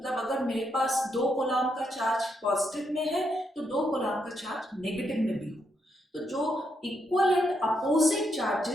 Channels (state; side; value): normal; both; correlation 0.79